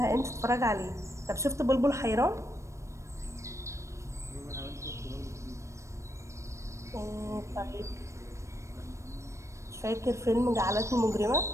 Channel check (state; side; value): late; left; 0.14 ms